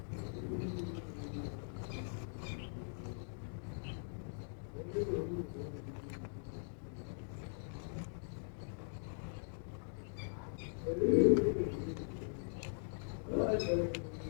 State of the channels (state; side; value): silent; right; digital silence